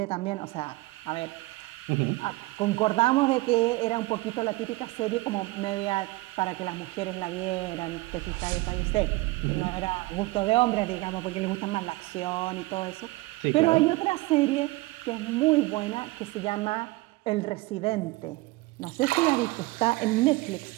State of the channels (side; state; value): left; quieter; 21.2 dB